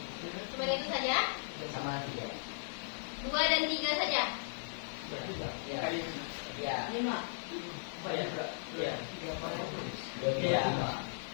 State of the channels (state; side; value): silent; right; 53 dB below the other